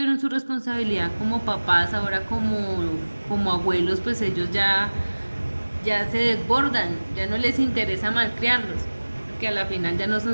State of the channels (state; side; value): inverted; both; correlation -1.00